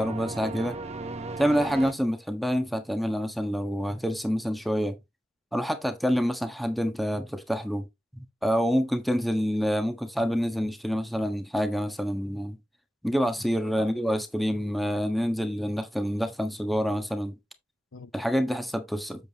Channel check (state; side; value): normal; both; correlation 0.94